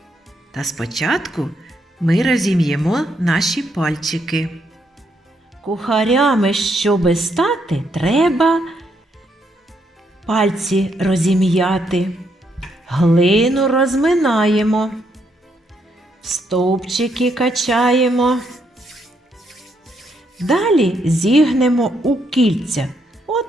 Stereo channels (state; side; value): normal; both; correlation 0.76